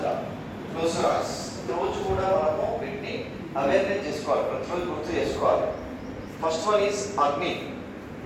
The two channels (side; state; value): both; identical; correlation 1.00